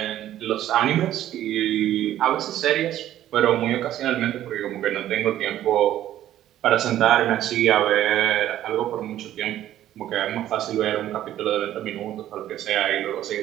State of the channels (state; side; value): quieter; left; 12.5 dB